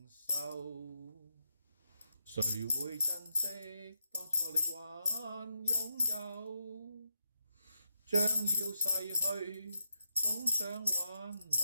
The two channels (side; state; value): both; inverted; correlation -0.82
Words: 受，誰會珍惜當初你還擁有？將要逝去，總想挽